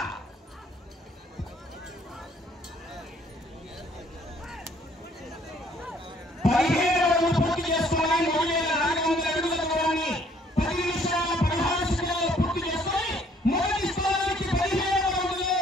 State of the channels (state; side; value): normal; both; correlation 0.62